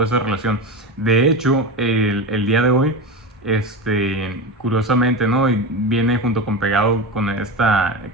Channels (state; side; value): normal; both; correlation 0.22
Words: de relación. De hecho, el día de hoy, curiosamente, ¿no?, y viene junto con pegado con